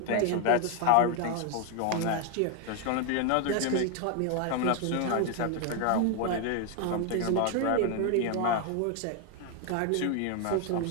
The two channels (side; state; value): both; different; correlation 0.01